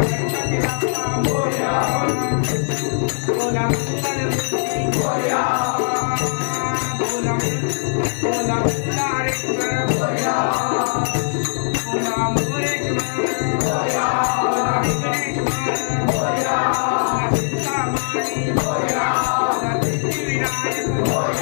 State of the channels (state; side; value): silent; right; digital silence